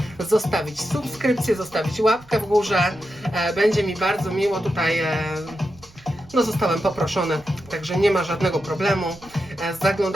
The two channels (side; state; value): right; noise; rumble, 24 dB below the sound